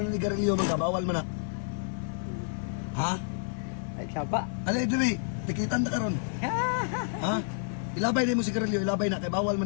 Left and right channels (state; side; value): silent; right; digital silence